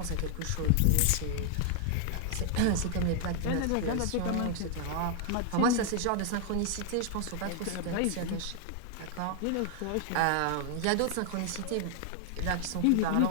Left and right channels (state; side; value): different; both; correlation 0.00